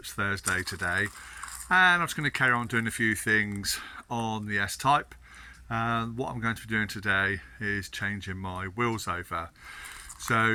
Thursday today. And I'm just going to carry on doing a few things on the S Type. What I'm going to be doing today is changing my wheels over.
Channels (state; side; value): identical; both; correlation 1.00